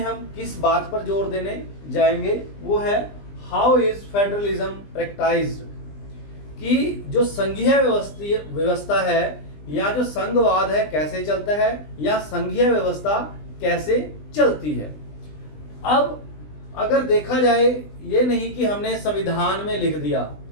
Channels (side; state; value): right; late; 20 ms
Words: किस बात पर जोर देने जाएंगे, वो है हाउ इज फेडरलिज्म प्रैक्टाइज्ड, कि जो संघीय व्यवस्था है या जो संघवाद है कैसे चलता है या संघीय व्यवस्था कैसे चलती है। अब अगर देखा जाए, ये नहीं कि हमने संविधान में लिख दिया